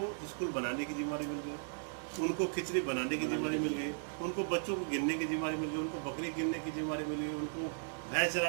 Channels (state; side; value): silent; left; digital silence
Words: स्कूल बनाने की जिम्मेदारी मिल गई, उनको खिचड़ी बनाने की जिम्मेदारी मिल गई, उनको बच्चों को गिनने की जिम्मेदारी मिल गई, उनको बकरी गिनने की जिम्मेदारी मिल गई, उनको भैंस